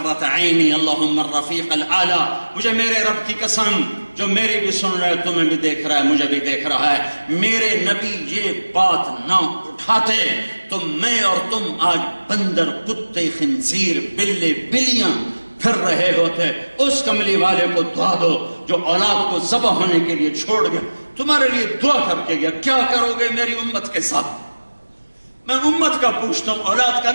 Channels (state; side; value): inverted; both; correlation -1.00